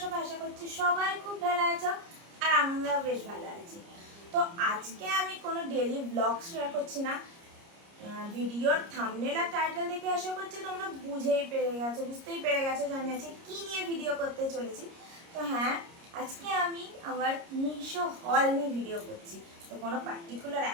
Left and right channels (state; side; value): late; left; 30 ms